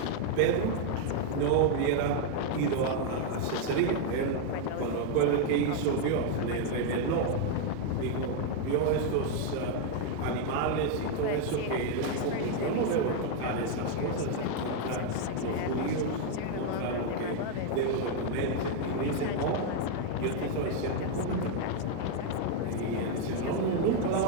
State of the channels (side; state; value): both; different; correlation 0.00